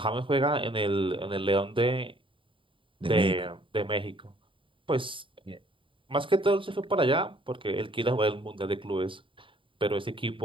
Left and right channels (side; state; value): left; late; 0.25 ms